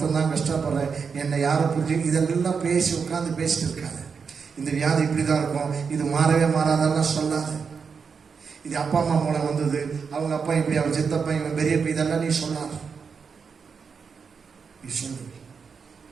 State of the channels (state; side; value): quieter; left; 5.8 dB